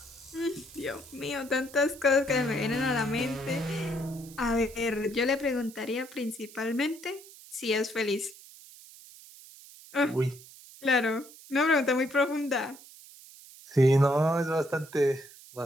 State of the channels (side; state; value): right; noise; hiss, 20 dB below the sound